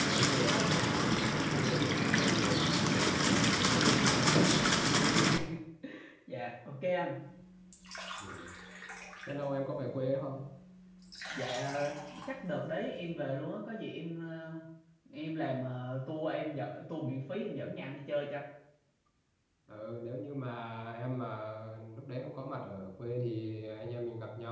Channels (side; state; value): both; identical; correlation 1.00